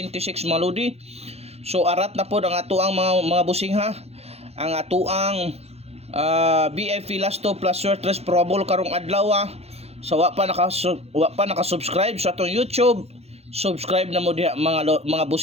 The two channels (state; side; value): late; left; 0.30 ms